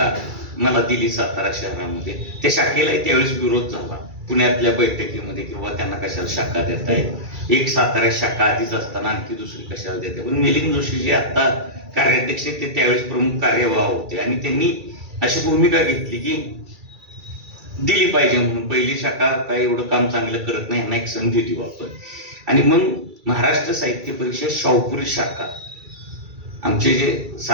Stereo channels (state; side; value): late; left; 2.3 ms